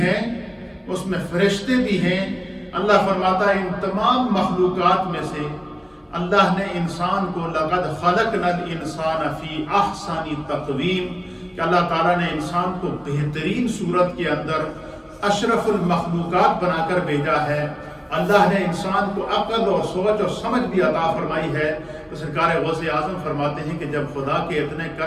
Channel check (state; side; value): identical; both; correlation 1.00